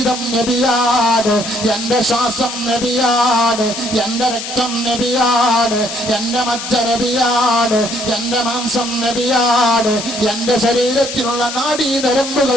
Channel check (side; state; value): left; noise; hiss, 7 dB below the sound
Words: നബിയാണ്, എന്റെ ശ്വാസം നബിയാണ്, എന്റെ രക്തം നബിയാണ്, എന്റെ മജ്ജ നബിയാണ്, എന്റെ മാംസം നബിയാണ്, എന്റെ ശരീരത്തിലുള്ള